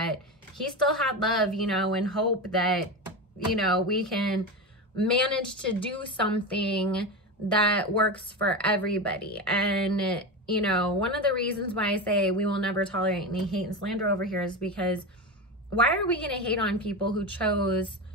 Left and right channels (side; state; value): both; normal; correlation 0.20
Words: he still had love, you know, and hope that, you know, we can manage to do something that works for everybody. And you know, one of the reasons why I say we will never tolerate any hate and slander over here is because why are we going to hate on people who chose